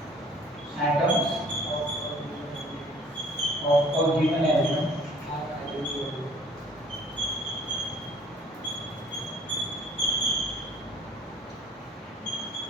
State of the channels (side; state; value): both; normal; correlation 0.54